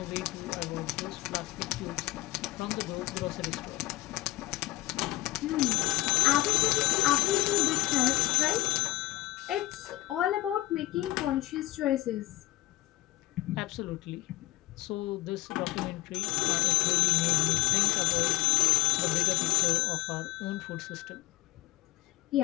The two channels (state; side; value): quieter; right; 17.1 dB